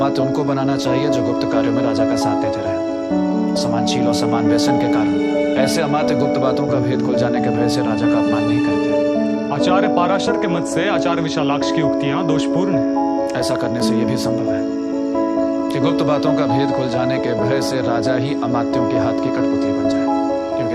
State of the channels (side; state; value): both; identical; correlation 1.00